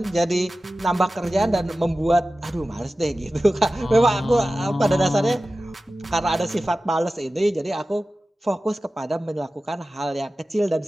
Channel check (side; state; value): both; normal; correlation 0.95